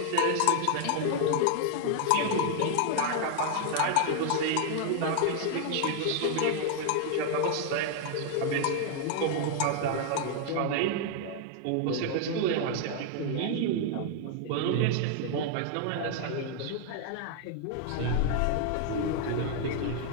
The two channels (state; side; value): different; both; correlation 0.00